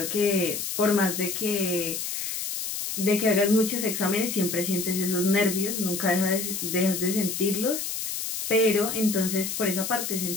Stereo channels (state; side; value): noise; left; hiss, 4 dB below the sound